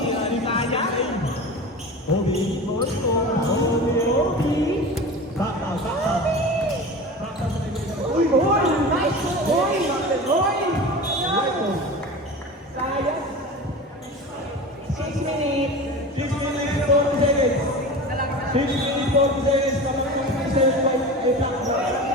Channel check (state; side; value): normal; both; correlation 0.32